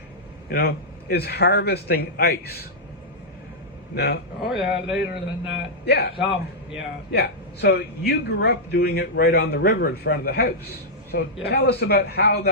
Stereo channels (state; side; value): normal; both; correlation -0.09